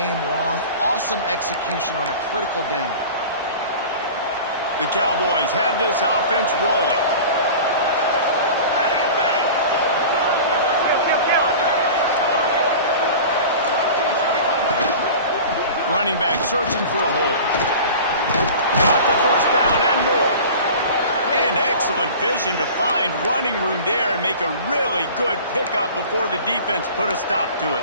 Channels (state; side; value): inverted; both; correlation -0.38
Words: long. Awesome execution on a critical down. The Cowboys have this offense rolling. Running back searching for a hole. Got the first down and more. And excellent vision to find running room there and make a really good pickup before the defense put a stop to it.